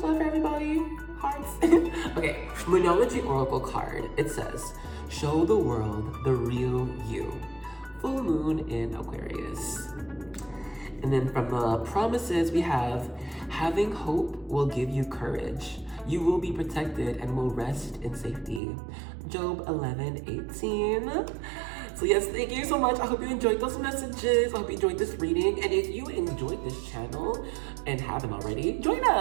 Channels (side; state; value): left; drops out; at 18.6 s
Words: love for everybody. Hearts. Okay, Moonology Oracle card. It says, show the world the real you. Full moon in Aquarius. And then from the promises we have, having hope will give you courage. You will be protected and will rest in safety. Job 11:18. So yes, thank you so much. I hope you enjoyed those messages. I hope you enjoyed this reading. And if you enjoyed this channel and haven't already, join